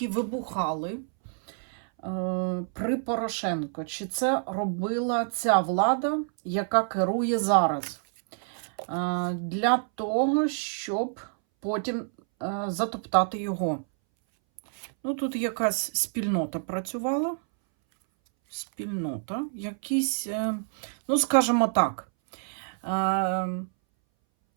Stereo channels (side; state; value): left; silent; 60 dB below the other